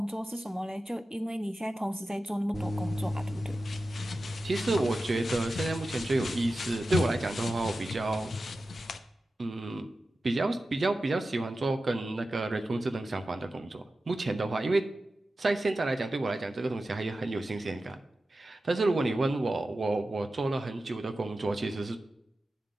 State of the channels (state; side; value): normal; both; correlation 0.93